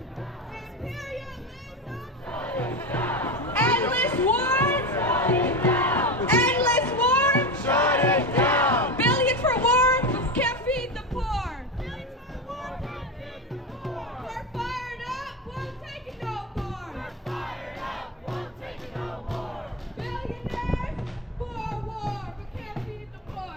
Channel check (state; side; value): normal; both; correlation 0.19